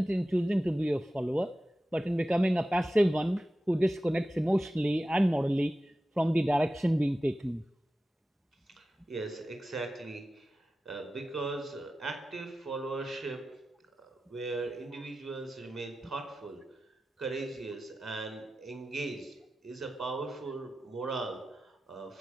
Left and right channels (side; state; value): both; normal; correlation 0.94